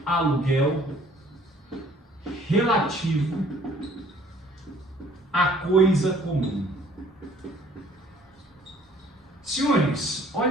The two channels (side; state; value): both; normal; correlation 0.57